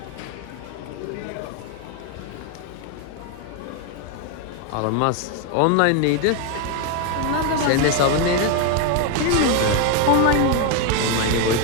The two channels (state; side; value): different; both; correlation 0.01